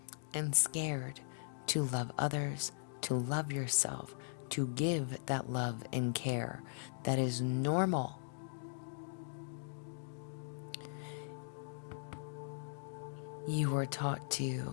and scared to love others, to love yourself, to give that love and care that is normal. You were taught to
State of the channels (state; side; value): silent; right; digital silence